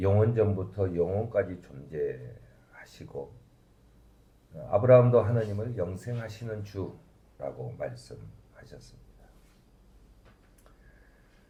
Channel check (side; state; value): both; identical; correlation 1.00